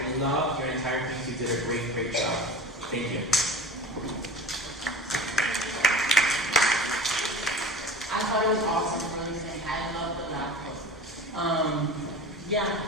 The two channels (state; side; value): normal; both; correlation 0.36